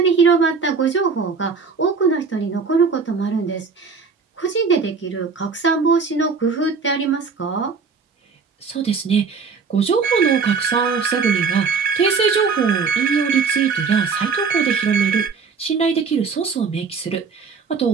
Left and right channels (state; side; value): quieter; left; 5.2 dB